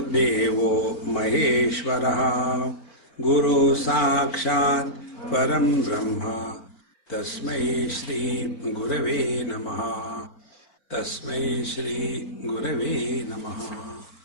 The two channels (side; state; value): right; late; 4.5 ms